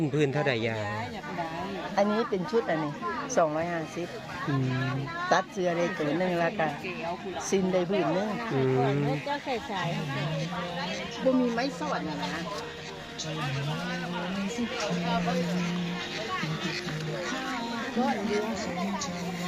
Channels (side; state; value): both; identical; correlation 1.00